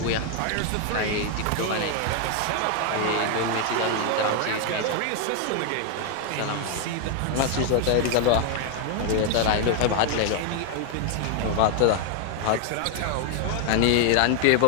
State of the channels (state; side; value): different; both; correlation 0.00